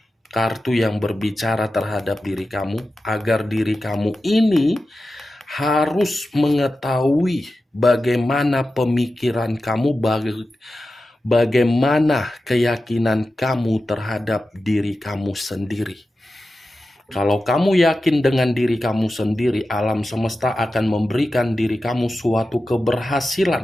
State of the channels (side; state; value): both; normal; correlation 0.93